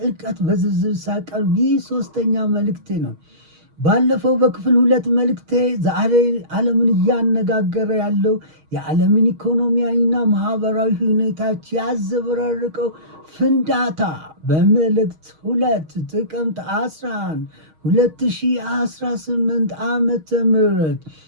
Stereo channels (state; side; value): late; left; 6.4 ms